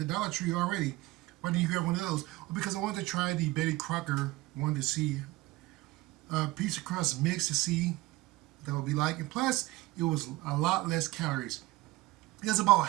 Dollar Tree already. Why didn't you grab one of those? Well, because I wanted to try the Betty Crocker. Wanted to see a piece of crust mix to see what that would be like. And plus, it was a lot less calories. It has about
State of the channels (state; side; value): quieter; left; 19.4 dB